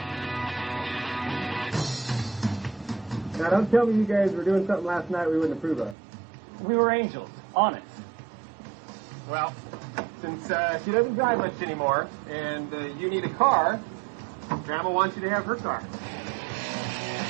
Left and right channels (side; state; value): left; drops out; at 6.0 s